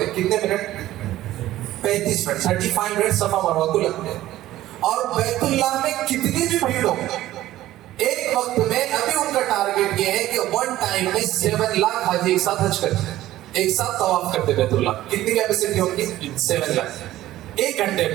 ہیں. کتنے منٹ؟ 35 منٹ، 35 منٹ صفا مروہ کو لگتے ہیں. اور بیت اللہ میں کتنی بھی بھیڑ ہو، ایک وقت میں ابھی ان کا ٹارگیٹ یہ ہے کہ 1 ٹائم میں 7 لاکھ حاجی ایک ساتھ حج کرتے ہیں، ایک ساتھ طواف کرتے بیت اللہ. کتنی کیپیسٹی ہوگی؟ 7 لاکھ 1 گھنٹے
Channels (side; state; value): left; quieter; 14.7 dB